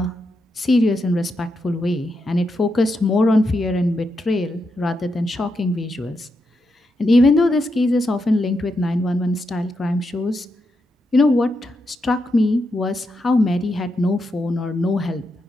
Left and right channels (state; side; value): normal; both; correlation 0.84